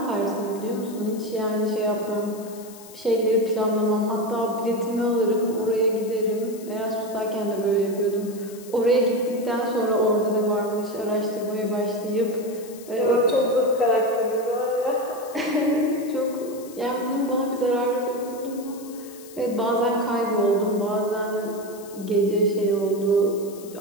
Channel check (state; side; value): noise; left; hiss, 19 dB below the sound